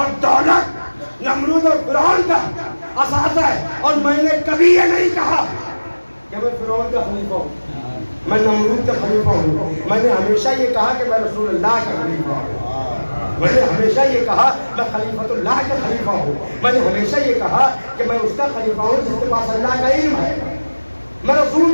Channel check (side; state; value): both; inverted; correlation -1.00